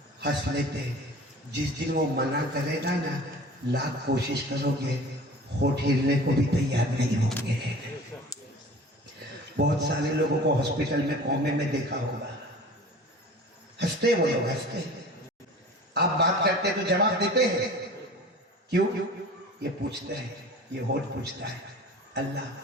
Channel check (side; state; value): both; normal; correlation 0.41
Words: ہنس لیتے. جس دن وہ منع کرے گا نا، لاکھ کوشش کرو گے ہوٹ ہلنے کو بھی تیار نہیں ہوں گے. بہت سارے لوگوں کو ہاسپٹل میں کومے میں دیکھا ہوگا، ہنستے وہ لوگ ہنستے. آپ بات کرتے تو جواب دیتے ہیں، کیوں؟ یہ پوچھتا ہے، یہ ہوٹ پوچھتا ہے اللہ